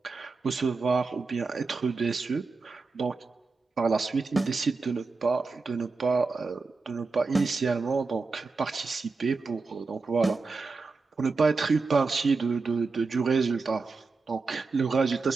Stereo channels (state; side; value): quieter; left; 4.1 dB